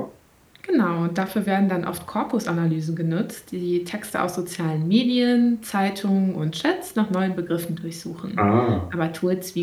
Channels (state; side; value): identical; both; correlation 1.00